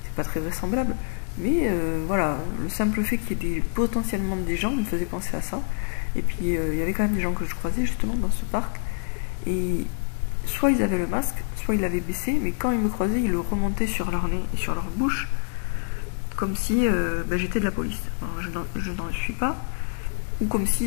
C'est pas très vraisemblable. Mais voilà, le simple fait qu'il y ait potentiellement des gens me faisait penser à ça. Et puis il y avait quand même des gens que je croisais justement dans ce parc. Et soit ils avaient le masque, soit ils l'avaient baissé, mais quand ils me croisaient, ils le remontaient sur leur nez et sur leur bouche, comme si j'étais de la police. Alors, je n'en suis pas. Ou comme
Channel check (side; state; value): right; silent; 61 dB below the other